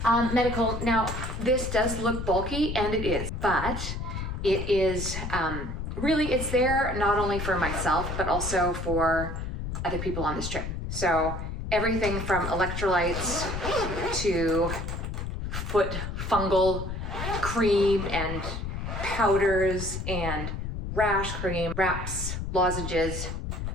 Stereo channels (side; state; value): left; noise; rumble, 5 dB below the sound